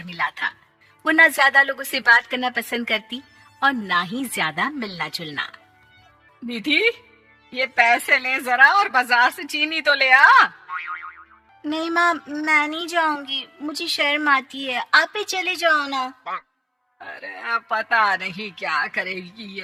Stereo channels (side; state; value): both; identical; correlation 1.00